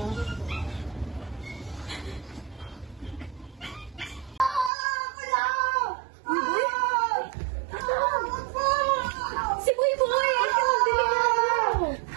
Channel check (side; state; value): left; drops out; at 4.7 s